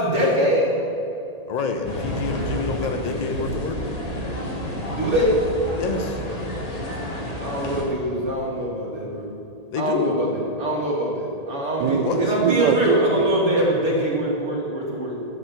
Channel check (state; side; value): late; left; 1.8 ms